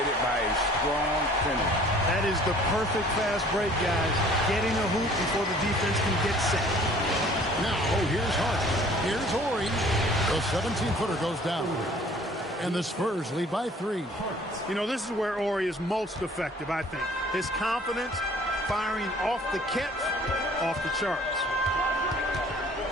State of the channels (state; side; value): normal; both; correlation 0.53